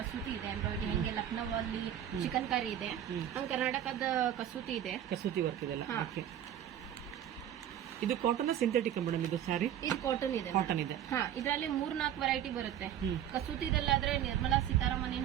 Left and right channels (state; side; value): quieter; left; 10.6 dB